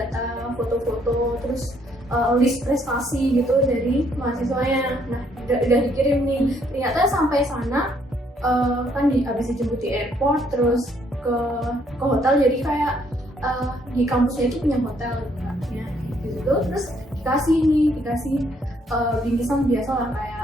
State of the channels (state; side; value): normal; both; correlation 0.68